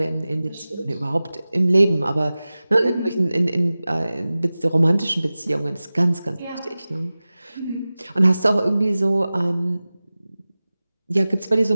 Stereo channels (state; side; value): inverted; both; correlation -0.97